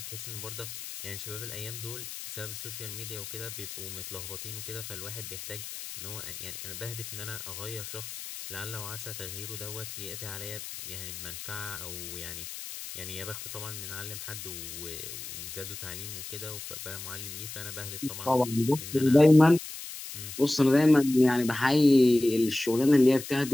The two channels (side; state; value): left; noise; hiss, 10 dB below the sound